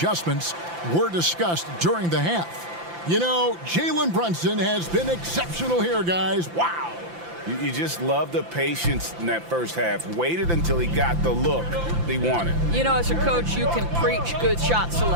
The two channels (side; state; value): left; late; 5.9 ms